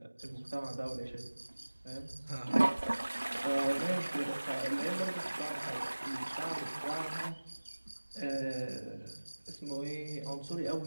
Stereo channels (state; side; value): inverted; both; correlation -1.00